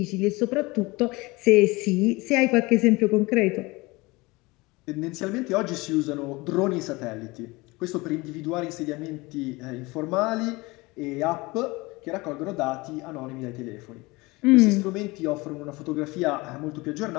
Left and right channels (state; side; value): quieter; right; 23.1 dB